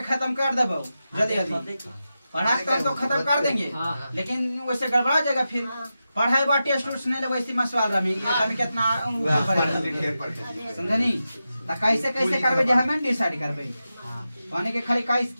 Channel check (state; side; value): inverted; both; correlation -0.91